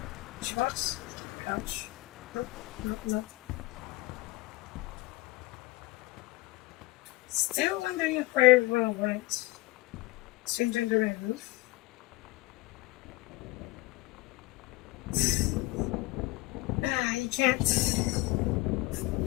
Box? Couch? Nope, nope, nope. Still wondering if everyone went. Strange under my roof. You can't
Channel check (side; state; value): right; quieter; 20.0 dB